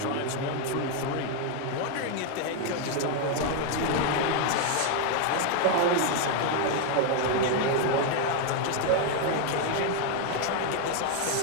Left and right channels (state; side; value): different; both; correlation 0.01